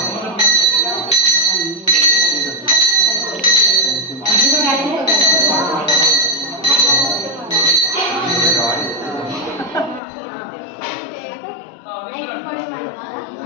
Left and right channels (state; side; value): drops out; right; at 10.0 s